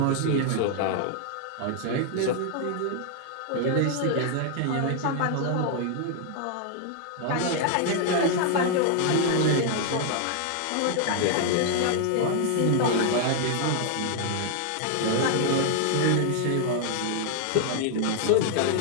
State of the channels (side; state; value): both; different; correlation 0.00